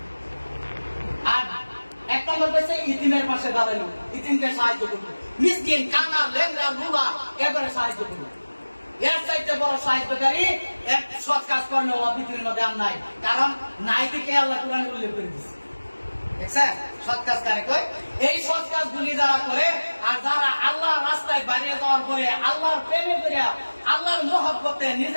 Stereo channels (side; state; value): both; inverted; correlation -1.00